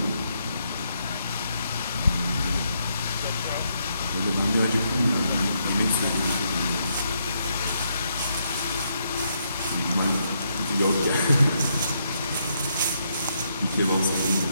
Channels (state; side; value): inverted; both; correlation -0.77